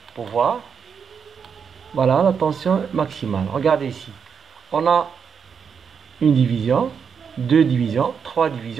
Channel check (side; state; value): left; quieter; 6.7 dB